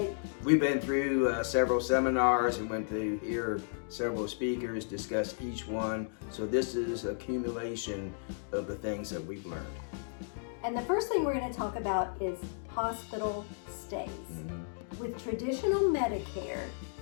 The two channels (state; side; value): silent; right; digital silence